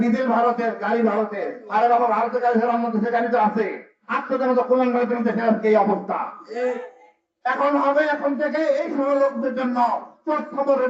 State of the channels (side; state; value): both; identical; correlation 1.00